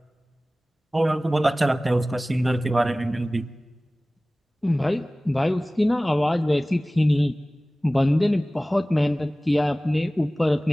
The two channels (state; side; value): normal; both; correlation 0.98